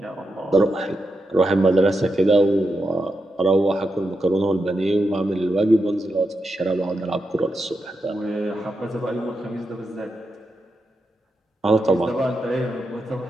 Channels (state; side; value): normal; both; correlation 0.86